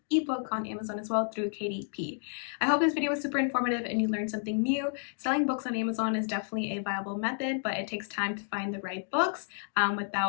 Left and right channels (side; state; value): right; silent; 57 dB below the other